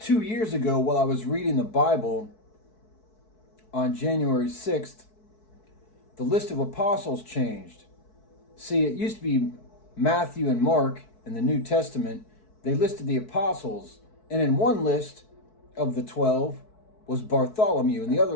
years ago, while I was reading the Bible on January 6th, the list of apostles changed. See, it used to be Matthew and Mark in the New Testament. They listed the apostles, and in one list of the 12 was Bartholomew. In the other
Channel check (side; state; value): right; late; 4.6 ms